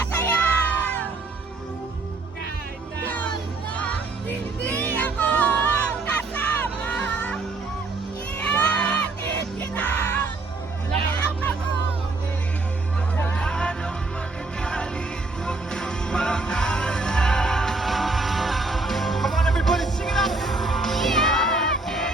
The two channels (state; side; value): quieter; left; 3.4 dB